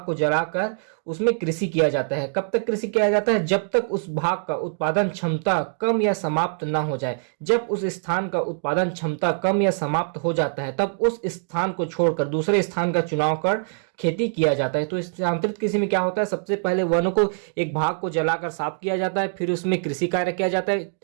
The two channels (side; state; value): left; silent; digital silence